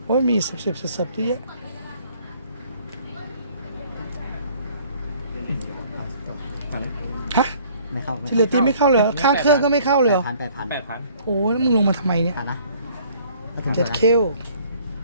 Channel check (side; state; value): both; inverted; correlation -0.57